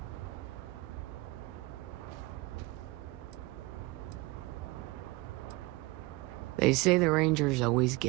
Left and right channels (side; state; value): left; quieter; 22.0 dB